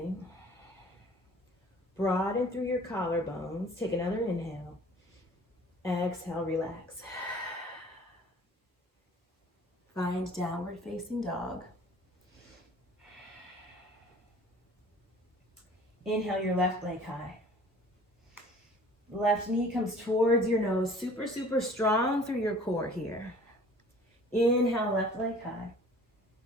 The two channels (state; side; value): normal; both; correlation 0.49